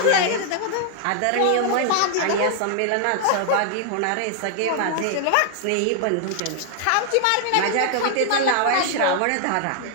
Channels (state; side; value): different; both; correlation 0.00